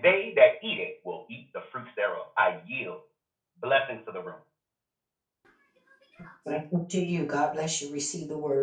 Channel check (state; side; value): identical; both; correlation 1.00